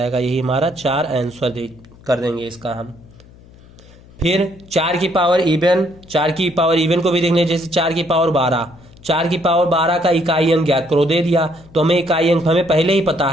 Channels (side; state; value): left; noise; hum, 24 dB below the sound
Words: यही हमारा 4 आंसर कर देंगे इसका हम। फिर 4 की पावर इवन, 4 की पावर इवन को भी देखने, जैसे 4 की पावर 12, 4 की पावर 12 का इकाई अंक ज्ञात करो, दे दिया। तो हमें इकाई अंक हमें पहले ही पता